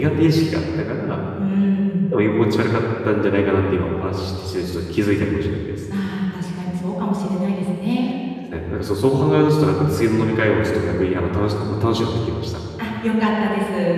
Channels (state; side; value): identical; both; correlation 1.00